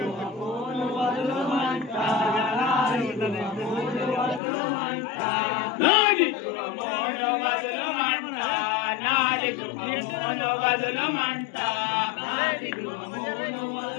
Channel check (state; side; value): drops out; right; at 4.4 s